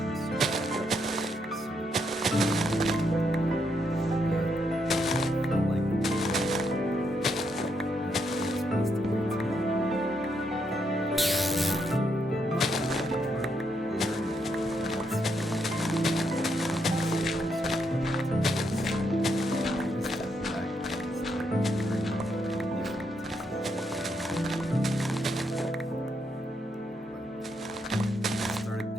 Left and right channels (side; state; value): both; normal; correlation 0.78